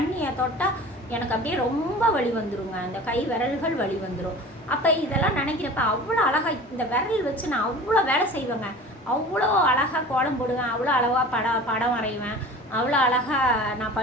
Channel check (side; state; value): both; normal; correlation 0.39